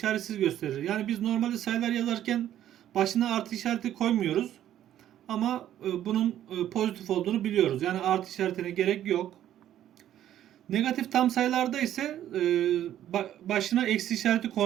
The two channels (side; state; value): left; quieter; 11.6 dB